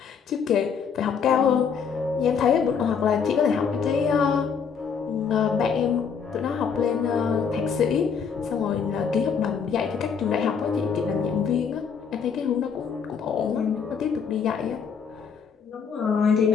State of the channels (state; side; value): quieter; right; 6.5 dB